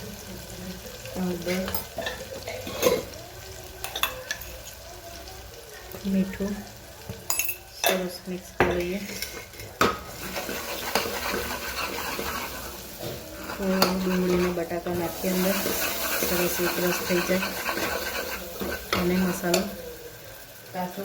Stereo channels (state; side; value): identical; both; correlation 1.00